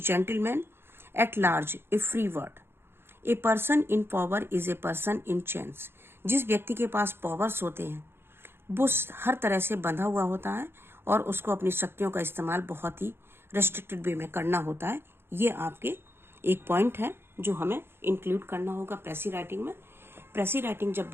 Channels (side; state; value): left; late; 0.11 ms